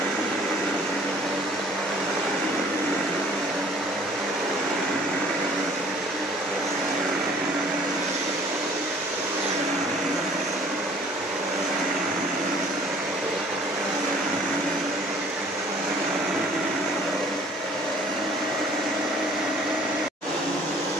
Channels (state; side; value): normal; both; correlation 0.54